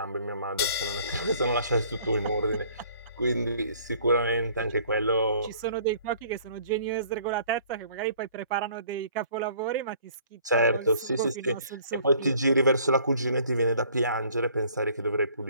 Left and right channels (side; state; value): both; inverted; correlation -0.56